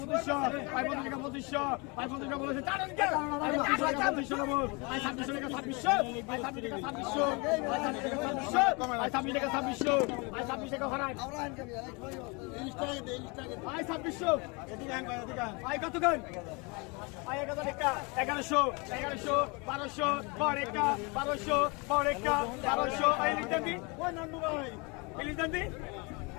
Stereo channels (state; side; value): quieter; right; 29.5 dB